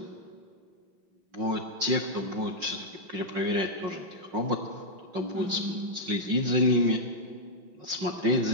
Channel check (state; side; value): late; left; 5.6 ms